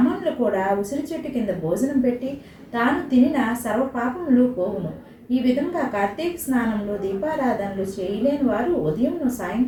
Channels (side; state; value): both; identical; correlation 1.00